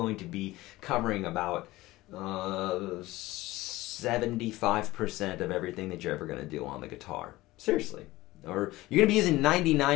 to be covering about 75% of everything that you're ever going to do on the guitar. Seriously. Or you're going to be using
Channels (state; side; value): quieter; right; 18.4 dB